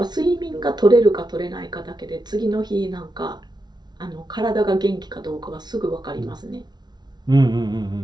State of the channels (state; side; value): late; left; 0.20 ms